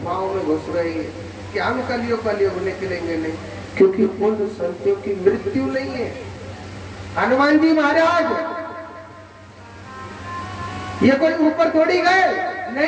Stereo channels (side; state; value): both; identical; correlation 1.00